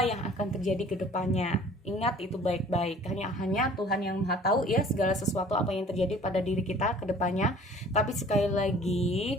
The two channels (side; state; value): both; normal; correlation 0.50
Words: yang akan terjadi ke depannya. Ingat itu baik-baik, hanya Tuhan yang Maha tahu ya segala sesuatu apa yang terjadi pada diri kita ke depannya. Tapi sekali lagi